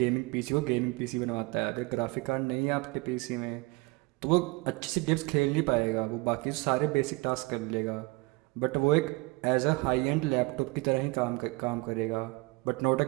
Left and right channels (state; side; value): quieter; left; 25.5 dB